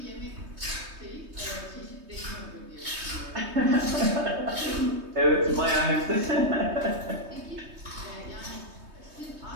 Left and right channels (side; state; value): left; late; 3.2 ms